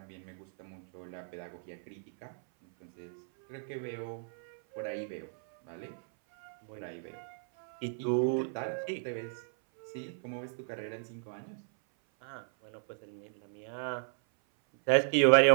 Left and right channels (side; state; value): left; silent; 55 dB below the other